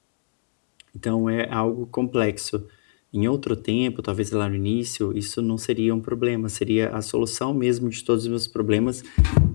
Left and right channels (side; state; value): right; silent; digital silence